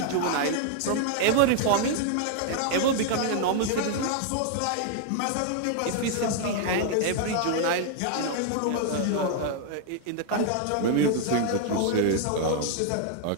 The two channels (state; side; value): different; both; correlation 0.00